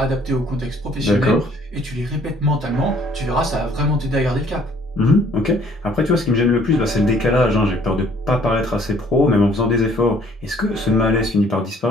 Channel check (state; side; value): normal; both; correlation 0.59